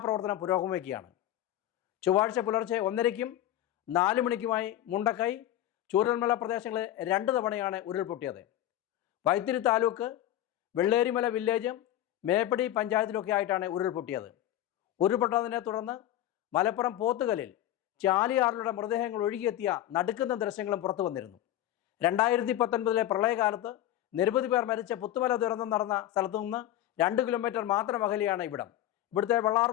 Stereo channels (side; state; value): right; quieter; 13.1 dB